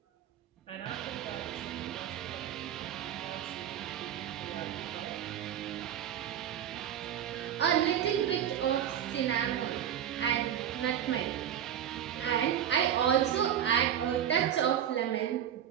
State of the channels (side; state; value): left; quieter; 9.9 dB